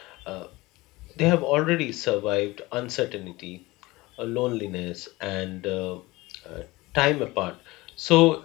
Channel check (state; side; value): quieter; right; 20.9 dB